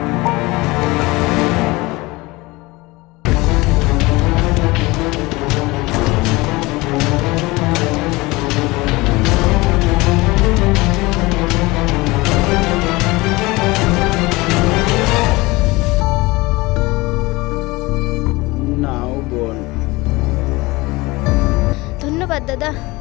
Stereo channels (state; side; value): quieter; right; 22.2 dB